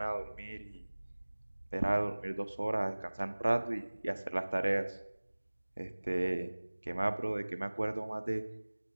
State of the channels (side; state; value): both; inverted; correlation -1.00